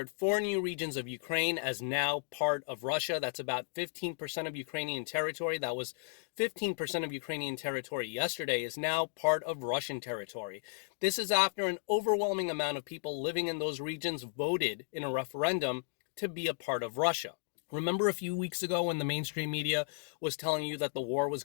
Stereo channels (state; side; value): silent; right; digital silence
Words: 4 new regions of Ukraine as now part of Russia. That's about 15% of Ukrainian territory. That was 15% of Ukrainian territory yesterday is now part of Russian territory. This is after an overwhelming amount of people living in those regions voted in a referendum to be a part of Russia. Remember a few weeks ago when the mainstream media was telling you that the war was